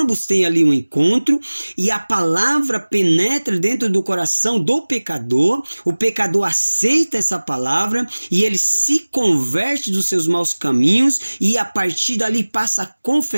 têm ali um encontro, e a palavra penetra dentro do coração do pecador, o pecador aceita essa palavra, e ele se converte dos seus maus caminhos, e a partir dali passa a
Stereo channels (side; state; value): both; inverted; correlation -1.00